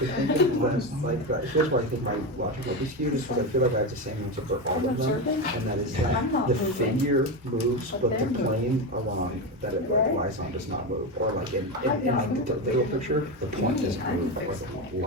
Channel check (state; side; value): normal; both; correlation 0.16